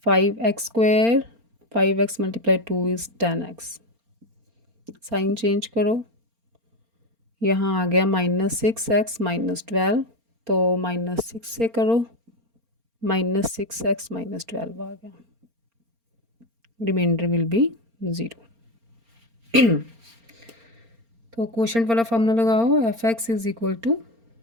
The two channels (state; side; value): late; left; 4.3 ms